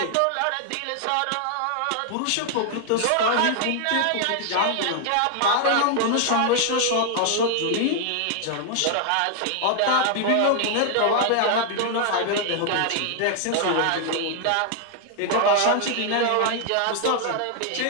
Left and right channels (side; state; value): both; different; correlation 0.00